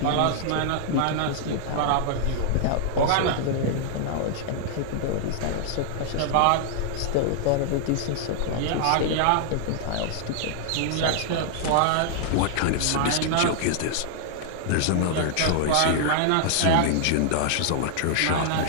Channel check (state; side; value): different; both; correlation -0.01